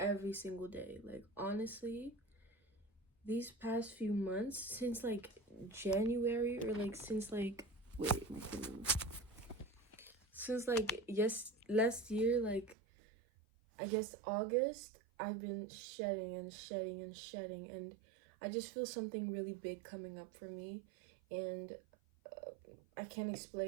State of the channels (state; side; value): drops out; left; at 12.8 s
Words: single day. Like, honestly, these past few months, since, like, January, or, like, since, like, wait, my phone. Since, like, last year, like, I guess August, I've been shedding and shedding and shedding, and I just feel something really big coming up for me, and I can't